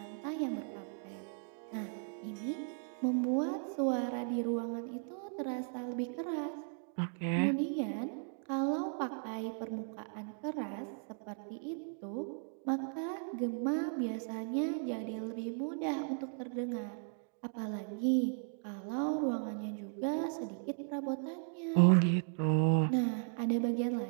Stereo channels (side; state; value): left; silent; 53 dB below the other